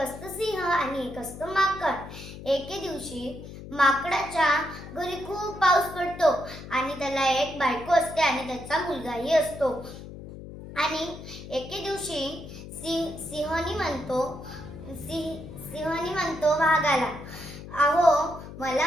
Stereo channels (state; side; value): noise; left; hum, 13 dB below the sound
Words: सिंह आणि एक असतं माकड. एके दिवशी माकडाच्या घरी खूप पाऊस पडतो आणि त्याला एक बायको असते आणि त्याचा मुलगाही असतो. आणि एके दिवशी सिंहनी म्हणतो वाघाला, अहो